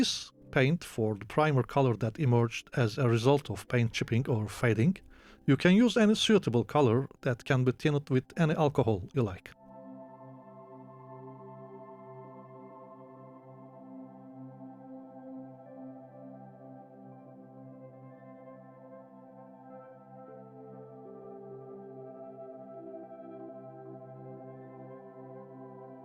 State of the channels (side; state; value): both; identical; correlation 1.00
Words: paint for the primer color that emerged as a result of paint chipping or fading. You can use any suitable color that can be tinted with any alcohol you like.